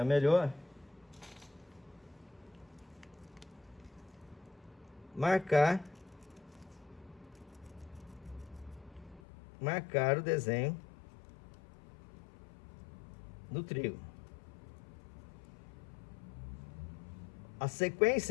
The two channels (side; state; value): right; drops out; at 9.2 s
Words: melhor, marcar o desenho do trígono. A